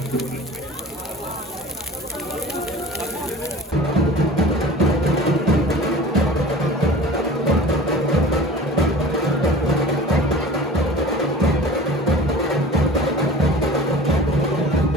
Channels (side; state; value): both; normal; correlation 0.40